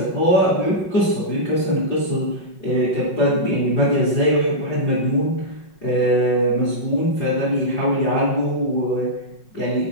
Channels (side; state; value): right; late; 5.5 ms